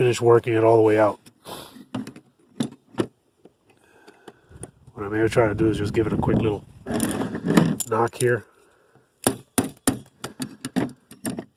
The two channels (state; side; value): identical; both; correlation 1.00